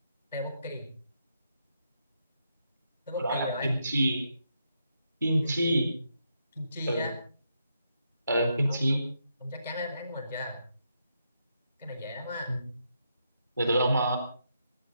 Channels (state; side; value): inverted; both; correlation -0.80